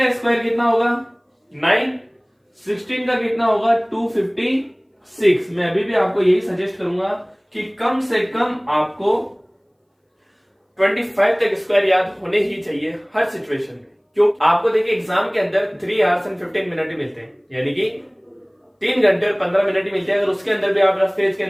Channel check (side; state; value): both; identical; correlation 1.00